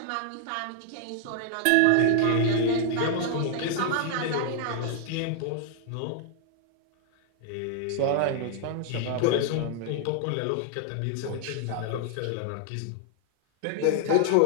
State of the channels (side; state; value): both; different; correlation 0.00